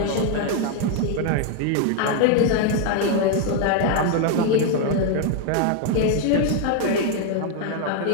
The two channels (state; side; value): different; both; correlation 0.01